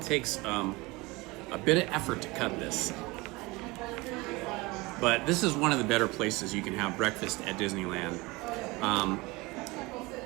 takes a bit of effort to cut this. But this is one of the better places you can have breakfast at Disneyland.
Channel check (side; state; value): left; quieter; 23.3 dB